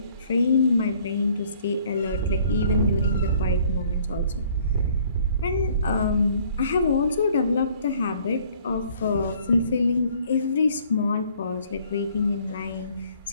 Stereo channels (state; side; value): inverted; both; correlation -0.59